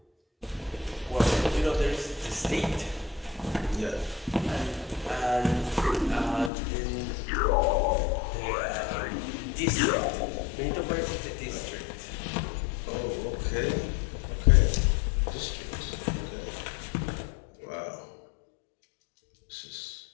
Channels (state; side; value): drops out; right; at 6.5 s